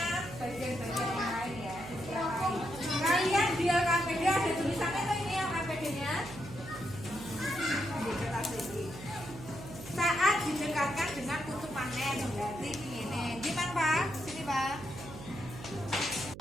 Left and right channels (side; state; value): right; noise; hum, 13 dB below the sound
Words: bagian-bagian yang lain ya. Kalian di LKPD ada tulisannya tuh ini LKPD nya saat didekatkan dengan kutub magnet. Berarti ini gimana Pak? Sini Pak.